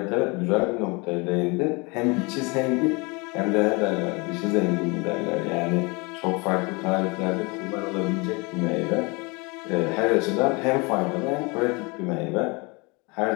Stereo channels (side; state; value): right; quieter; 28.2 dB